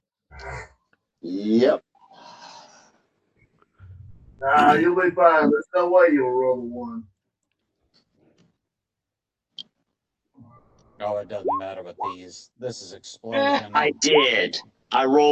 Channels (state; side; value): identical; both; correlation 1.00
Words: Yep. Nah, you'll be fine. There's no way you'll roll a 1. Oh, it doesn't matter with these. This is explosion. I did. I